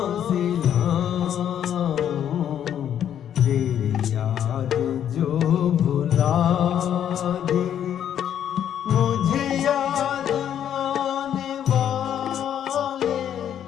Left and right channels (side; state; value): right; quieter; 9.7 dB